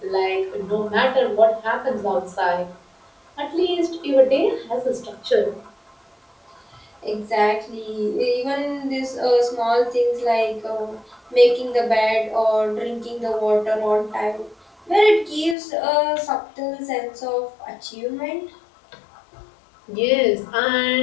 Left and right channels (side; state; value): right; drops out; at 15.6 s